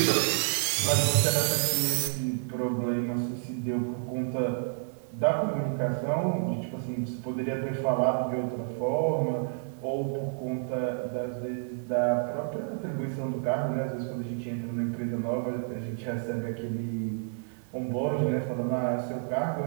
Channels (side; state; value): left; silent; 58 dB below the other